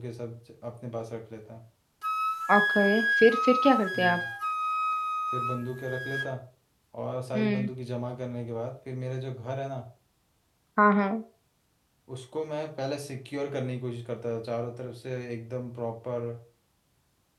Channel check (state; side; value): identical; both; correlation 1.00